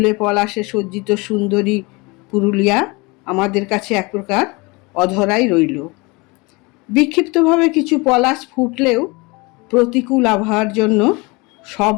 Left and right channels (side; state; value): right; quieter; 26.2 dB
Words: পলাশে সজ্জিত সুন্দরী পুরুলিয়া আমাদের কাছে এক প্রকার অধরাই রইল। বিক্ষিপ্তভাবে কিছু পলাশ ফুটলেও প্রতিকূল আবহাওয়ার জন্য সব